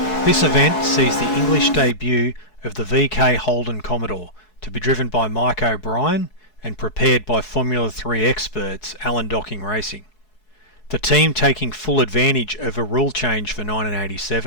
This event sees the English debut of the VK Holden Commodore, to be driven by Mike O'Brien and prepared by Formula 3 experts Alan Docking Racing. The team taking full advantage of a rule change for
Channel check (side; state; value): right; late; 4.7 ms